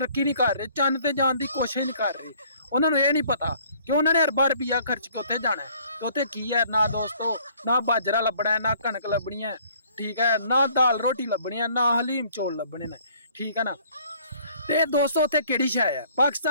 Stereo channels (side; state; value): both; inverted; correlation -0.58